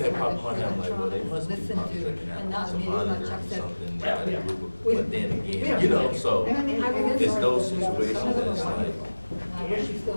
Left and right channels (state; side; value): inverted; both; correlation -1.00